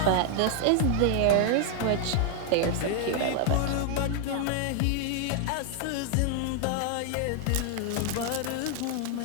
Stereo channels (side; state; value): both; different; correlation 0.00